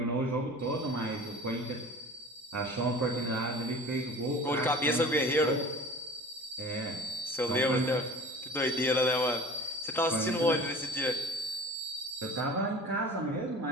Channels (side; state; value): both; normal; correlation 0.41